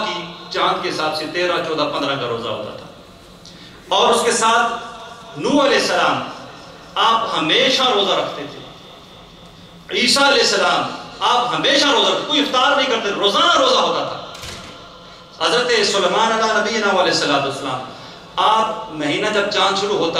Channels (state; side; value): identical; both; correlation 1.00